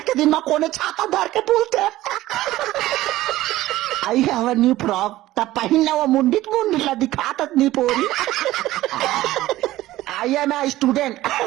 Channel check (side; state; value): left; quieter; 16.0 dB